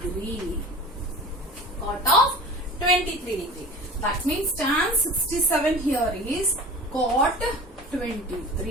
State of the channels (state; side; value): normal; both; correlation 0.38